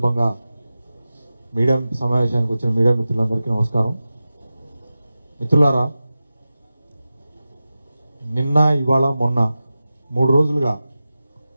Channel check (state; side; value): inverted; both; correlation -0.94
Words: మీడియా సమావేశానికి వచ్చిన మీడియా మిత్రులందరికీ నమస్కారం. మిత్రులారా, నిన్న ఇవాళ మొన్న 3 రోజులుగా